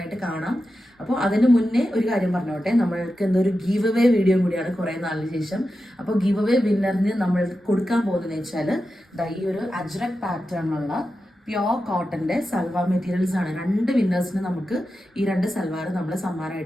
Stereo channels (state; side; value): normal; both; correlation 0.91